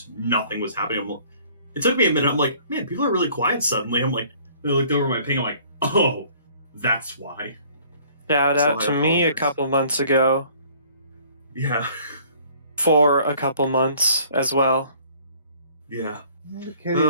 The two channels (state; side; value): inverted; both; correlation -0.55